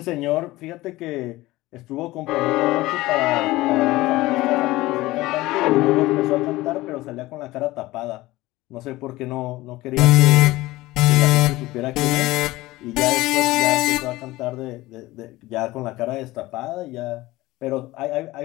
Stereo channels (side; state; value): right; quieter; 18.6 dB